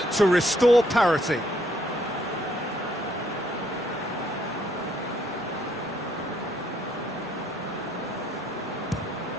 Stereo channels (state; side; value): normal; both; correlation 0.69